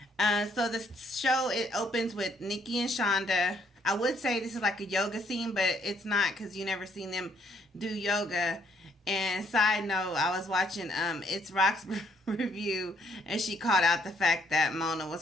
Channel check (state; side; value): normal; both; correlation 0.68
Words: So the show, it opens with Nikki and Shonda. I would say this is like a yoga scene, but it's not because you never seen them do yoga. And side note, I was watching It's Rock's review, and she called out the fact that Mona